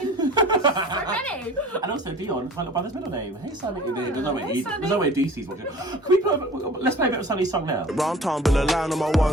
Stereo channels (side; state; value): both; normal; correlation 0.44